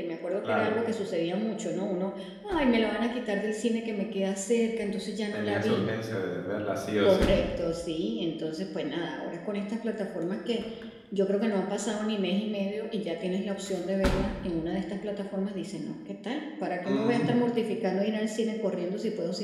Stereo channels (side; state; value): both; identical; correlation 1.00